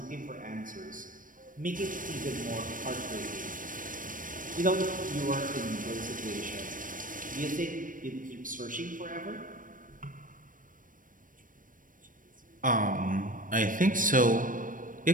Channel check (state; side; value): late; left; 0.39 ms